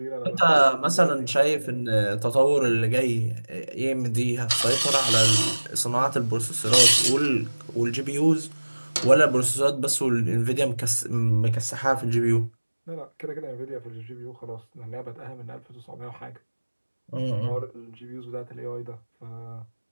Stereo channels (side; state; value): both; inverted; correlation -1.00